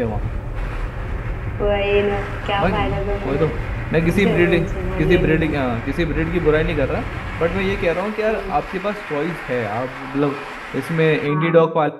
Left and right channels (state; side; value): identical; both; correlation 1.00